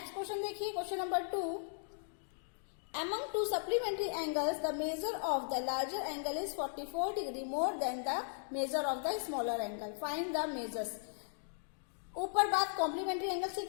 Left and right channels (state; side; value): silent; right; digital silence